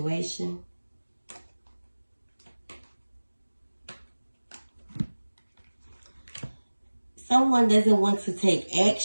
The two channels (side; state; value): both; inverted; correlation -1.00